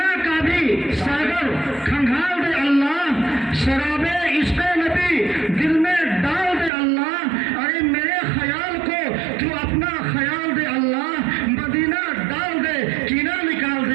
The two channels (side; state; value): left; drops out; at 6.7 s